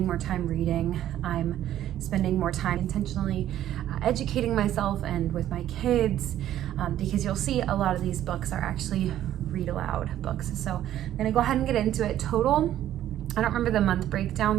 more time reading. I'm spending more time intentionally educating myself and with my kids, because you'll see a lot of these books are actually read aloud books. So I'm gonna go ahead and get into it. Total, I don't remember the month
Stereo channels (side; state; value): left; quieter; 12.2 dB